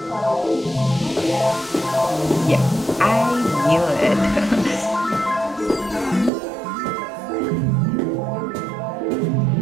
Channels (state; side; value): drops out; left; at 6.3 s